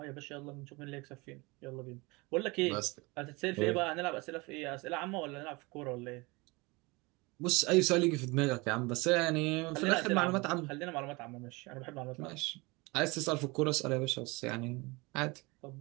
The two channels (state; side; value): quieter; left; 25.3 dB